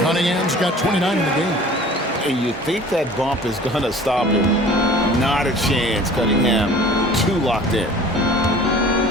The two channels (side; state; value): both; normal; correlation 0.46